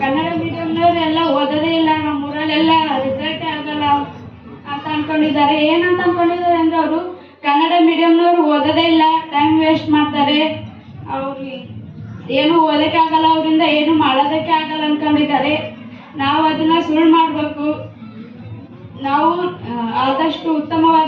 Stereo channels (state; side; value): identical; both; correlation 1.00